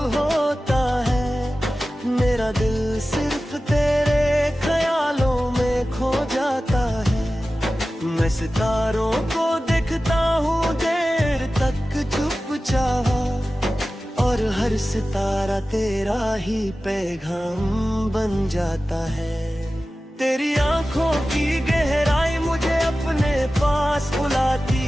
होता है, मेरा दिल सिर्फ तेरे ख्यालों में खो जाता है। मैं सितारों को देखता हूँ देर तक चुपचाप, और हर सितारा तेरा ही पैगाम बन जाता है। तेरी आंखों की गहराई मुझे अपने पास बुलाती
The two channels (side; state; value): both; normal; correlation 0.95